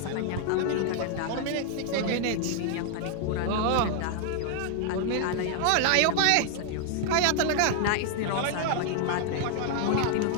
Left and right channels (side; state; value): both; different; correlation 0.00